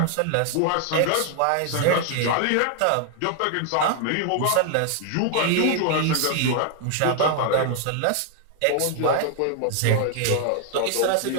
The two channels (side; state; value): both; different; correlation 0.00